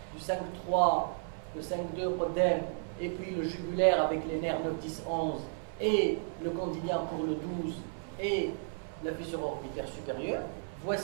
du 5-3, le 5-2 podème, et puis le jugulaire avec les nerfs 9, 10, 11, et le condylien pour le 12, et la fissure orbitaire supérieure.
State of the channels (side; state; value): left; silent; 56 dB below the other